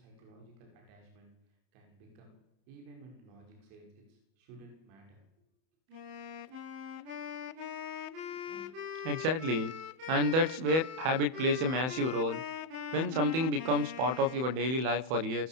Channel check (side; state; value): left; late; 31 ms